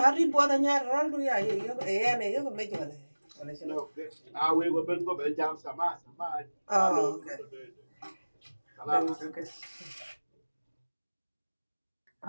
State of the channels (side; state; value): both; inverted; correlation -1.00